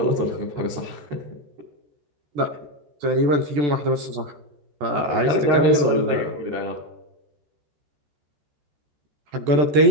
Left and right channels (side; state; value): left; late; 14 ms